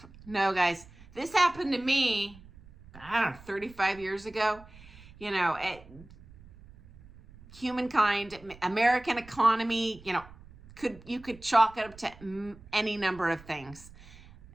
No, guys. This happened to me, 35 years ago. Humankind, American economy, you could chalk it up to any number of things.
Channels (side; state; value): right; noise; rumble, 21 dB below the sound